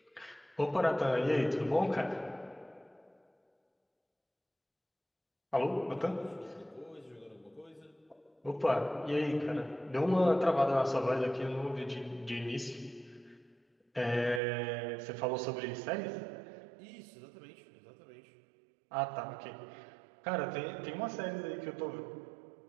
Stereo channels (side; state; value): left; drops out; at 14.4 s